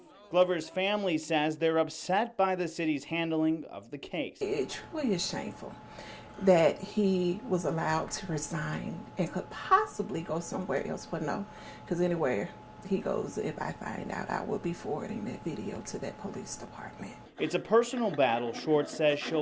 Glover's family says they're upset by the city's handling of the case. It truly is shameful that he was allowed to resign and could possibly go somewhere else, but no, because anywhere He goes, if I find out, I will be forwarding that video to that police department. It's a personal battle Short says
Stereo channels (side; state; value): both; identical; correlation 1.00